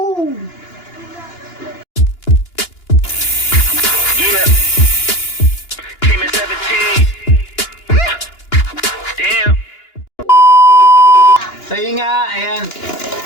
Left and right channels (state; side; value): late; right; 2.9 ms